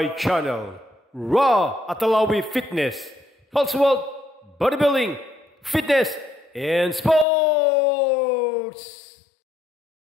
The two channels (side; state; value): right; drops out; at 7.2 s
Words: channel, Raw Atalawi Fitness, Health World, Bodybuilding, Fitness, and Sports!